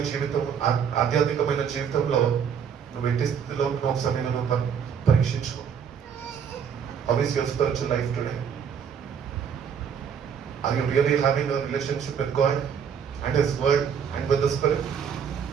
జీవితం, ఆధ్యాత్మికమైన జీవితంలో నువ్వు ఎట్టి స్థితిలో ఉంటున్న ఒకసారి నేను పరీక్షించుకో. How is your spiritual life today? Are you really having a relationship with God and His Word and with the Spirit?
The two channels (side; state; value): left; quieter; 7.4 dB